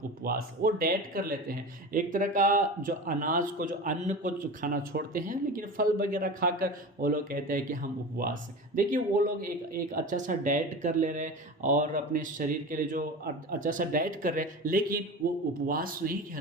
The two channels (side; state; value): both; normal; correlation 0.30